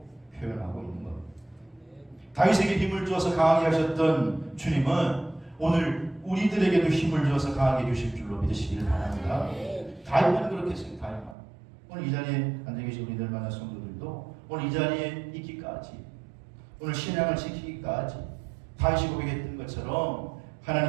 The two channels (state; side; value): drops out; left; at 11.4 s